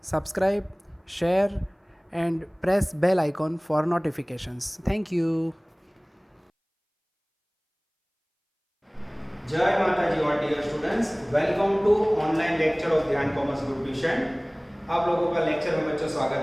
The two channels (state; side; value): identical; both; correlation 1.00